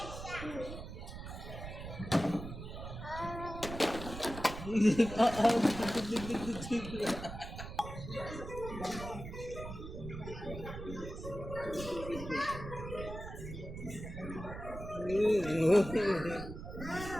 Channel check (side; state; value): right; noise; rumble, 9 dB below the sound